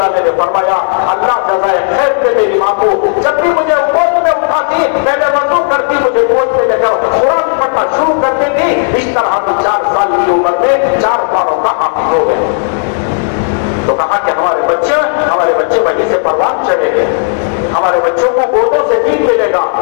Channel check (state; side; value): silent; right; 67 dB below the other